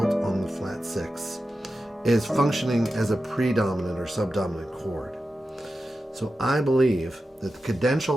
on the flat 6, is functioning as a predominant or subdominant chord. So I believe that the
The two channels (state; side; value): normal; both; correlation 0.92